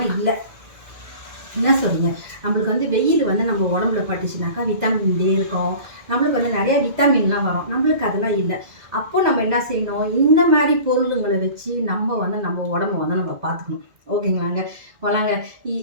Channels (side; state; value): left; late; 2.0 ms